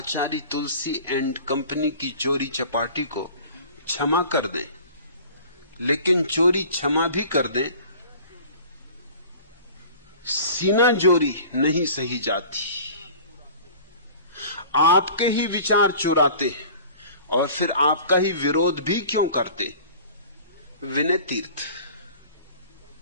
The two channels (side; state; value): both; inverted; correlation -0.44